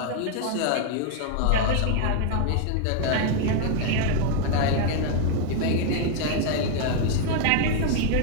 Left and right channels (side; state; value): both; different; correlation 0.00